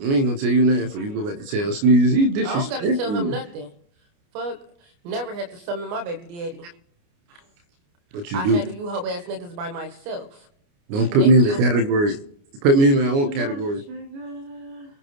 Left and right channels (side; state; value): left; late; 29 ms